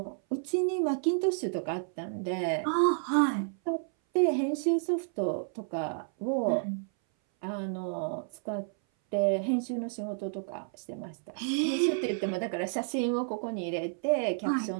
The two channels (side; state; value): left; silent; 57 dB below the other